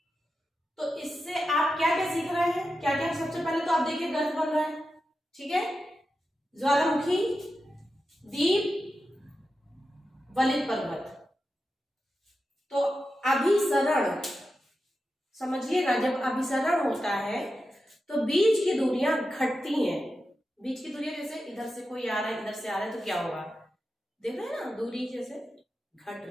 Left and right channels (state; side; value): normal; both; correlation 0.90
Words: तो इससे आप क्या क्या सीख रहे हैं, क्या क्या? सबसे पहले तो आप देखिए गर्त बन रहा है, ठीक है। ज्वालामुखी, दीप, वलित पर्वत। तो अभिसरण समझिएगा, जब अभिसरण होता है तो बीच की दूरियां घटती हैं। बीच की दूरियां जैसे इधर से कोई आ रहा है, इधर से आ रहा है, तो क्या होगा, देख रहे हैं ना, दूरी जैसे घट